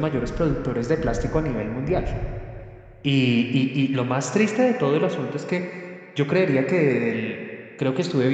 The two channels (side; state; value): both; identical; correlation 1.00